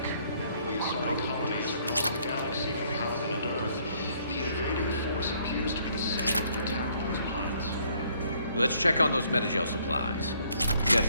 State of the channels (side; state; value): both; inverted; correlation -0.65